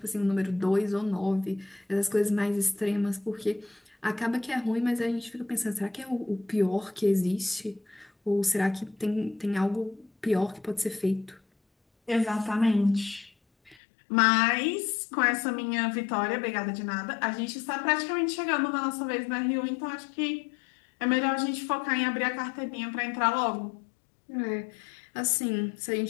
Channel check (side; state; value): right; drops out; at 13.8 s